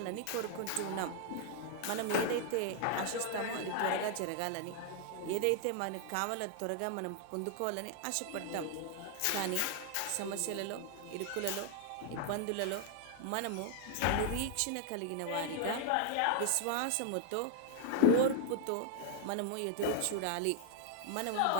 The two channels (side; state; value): both; different; correlation -0.01